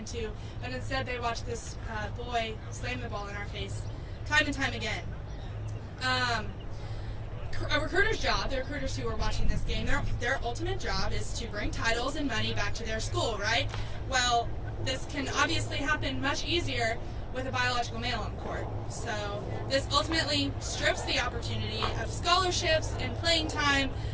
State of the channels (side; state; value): both; identical; correlation 1.00